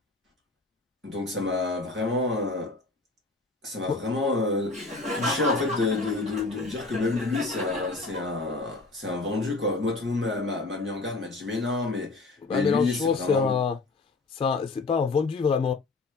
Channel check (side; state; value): right; quieter; 3.4 dB